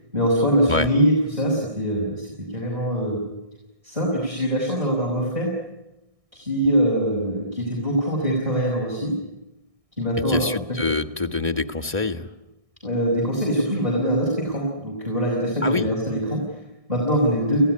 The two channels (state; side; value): late; left; 1.6 ms